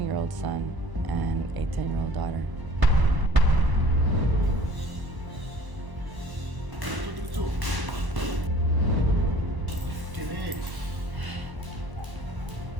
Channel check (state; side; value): late; left; 1.0 ms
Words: son, and a 10-year-old daughter.